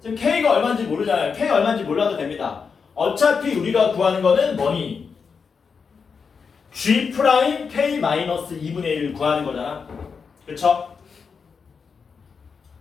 지금 K가 얼마인지 모르잖아요. K가 얼마인지 몰라도 됩니다. 어차피 우리가 구하는 거는 뭐니? G 프라임 K 마이너스 2분의 1을 구하는 거잖아. 그쵸?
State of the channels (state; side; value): quieter; right; 5.6 dB